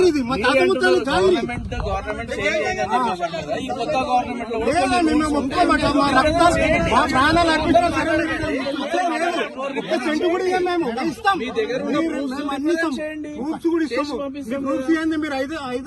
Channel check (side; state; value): both; identical; correlation 1.00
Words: ఇది, మా తాత ముత్తాలు జాగిరి. మేము ఒప్పుకోమాట. మా రక్తం, మా ప్రాణాలు అర్పించిన ఒక్క సెంటు కూడా ఇవ్వం. మేము ఇస్తాం, అన్ని ఇస్తాం. ప్రూఫ్స్ కూడా ఇస్తాము. ప్రూఫ్స్ ఇవ్వండి. మీరు